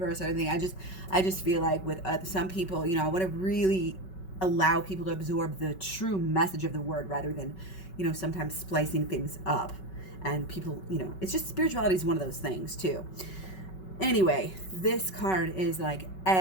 or anything, I just feel like with some people, I want to really allow people to absorb the true message of the word, rather than, sometimes splicing things up. And people, it's just, spirituality is one of those things too. Anyway, this card is like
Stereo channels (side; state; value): right; late; 5.3 ms